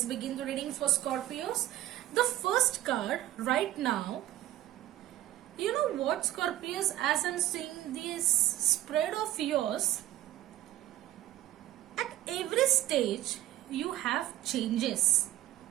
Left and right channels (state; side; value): quieter; left; 14.3 dB